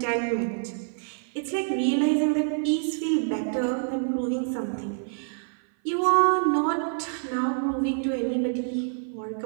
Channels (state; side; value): silent; left; 56 dB below the other